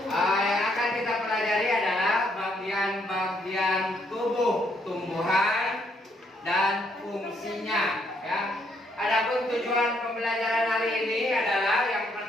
Yang akan kita pelajari adalah bagian-bagian tubuh tumbuhan dan fungsinya. Ya. Adapun tujuan pembelajaran hari ini adalah yang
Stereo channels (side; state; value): both; normal; correlation 0.72